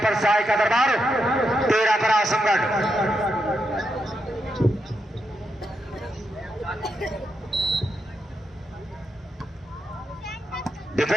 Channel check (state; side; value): normal; both; correlation 0.83